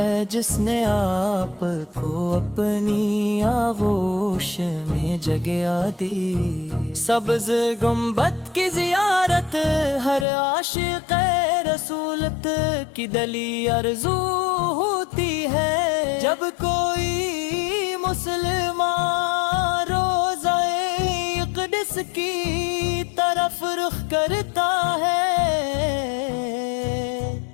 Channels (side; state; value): right; drops out; at 10.2 s